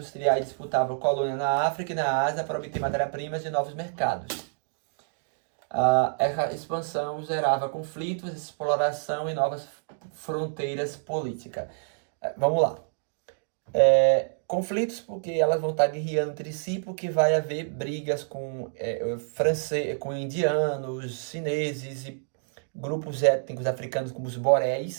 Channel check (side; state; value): left; silent; digital silence